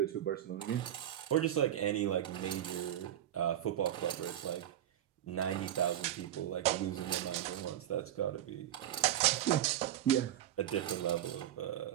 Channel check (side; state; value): left; quieter; 11.7 dB